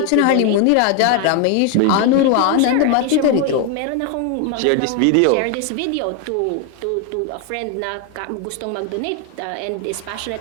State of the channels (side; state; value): both; different; correlation 0.01